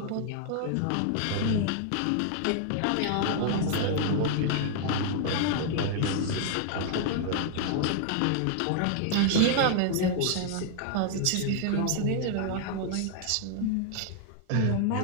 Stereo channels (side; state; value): both; different; correlation 0.00